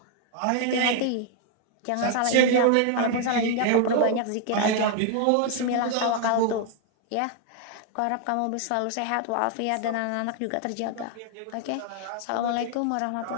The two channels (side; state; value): both; different; correlation 0.00